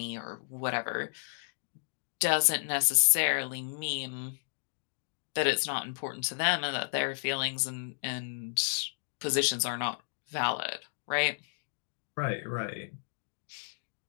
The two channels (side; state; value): right; silent; digital silence